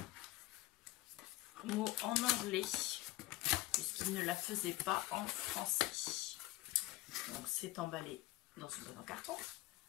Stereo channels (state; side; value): quieter; right; 17.8 dB